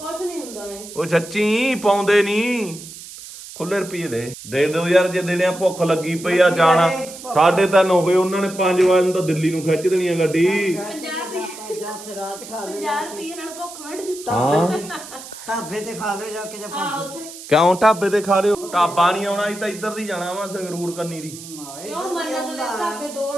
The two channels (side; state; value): right; noise; hiss, 14 dB below the sound